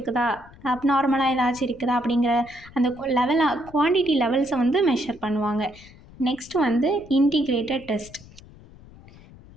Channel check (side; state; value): left; noise; rumble, 22 dB below the sound